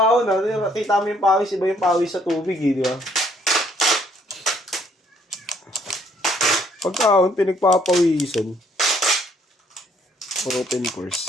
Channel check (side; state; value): both; normal; correlation 0.66